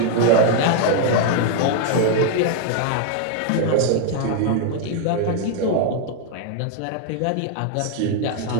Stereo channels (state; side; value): different; both; correlation 0.00